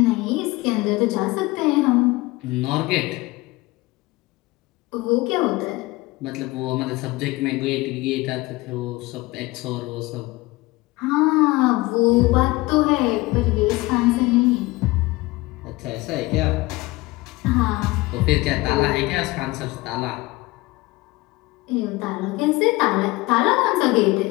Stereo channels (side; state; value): right; quieter; 21.1 dB